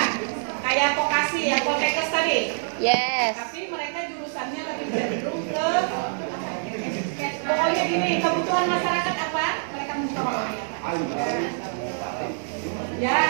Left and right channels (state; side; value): silent; left; 62 dB below the other